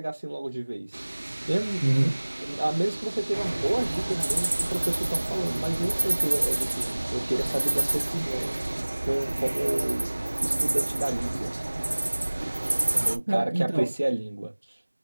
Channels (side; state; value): both; inverted; correlation -1.00